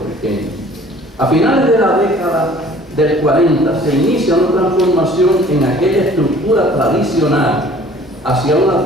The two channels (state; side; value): normal; both; correlation 0.52